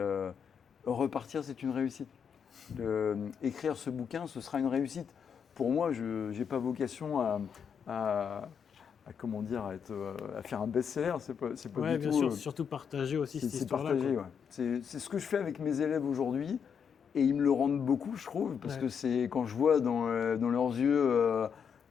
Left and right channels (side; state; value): right; quieter; 7.1 dB